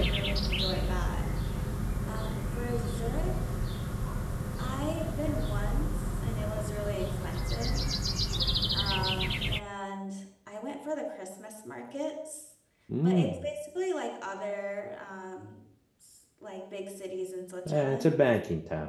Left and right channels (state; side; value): identical; both; correlation 1.00